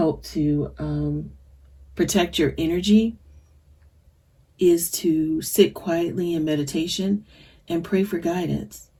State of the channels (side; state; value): both; identical; correlation 1.00